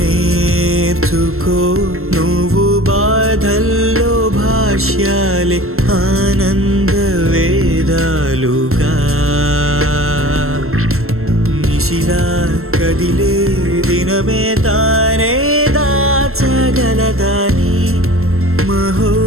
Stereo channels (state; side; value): late; left; 0.62 ms